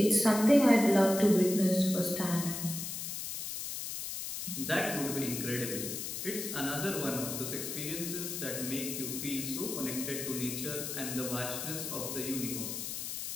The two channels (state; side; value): noise; left; hiss, 5 dB below the sound